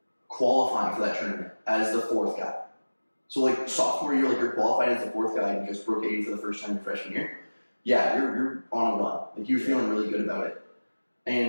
qualifying for that tournament as the 4th guy. So like sophomore year, like you're qualified as the fourth guy and just broke 80 for the first time your freshman year. Yeah, you're on a run. Like you're feeling really good about it.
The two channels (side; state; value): both; inverted; correlation -1.00